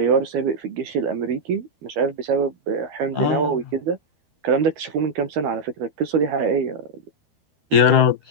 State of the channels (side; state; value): left; late; 13 ms